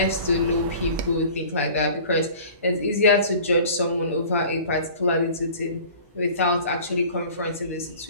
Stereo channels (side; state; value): both; inverted; correlation -0.45